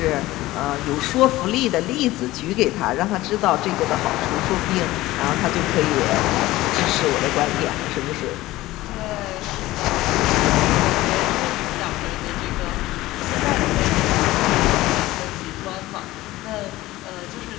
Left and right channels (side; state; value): right; quieter; 17.5 dB